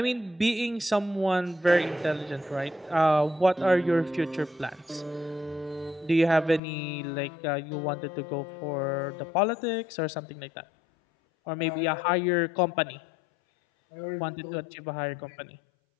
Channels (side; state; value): right; drops out; at 6.6 s